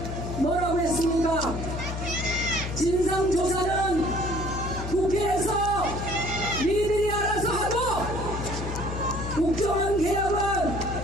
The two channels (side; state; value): left; noise; hum, 6 dB below the sound